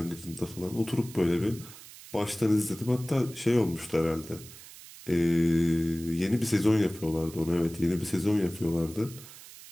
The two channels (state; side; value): noise; right; hiss, 17 dB below the sound